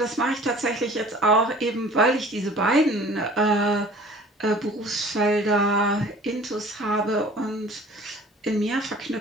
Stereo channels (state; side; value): normal; both; correlation 0.48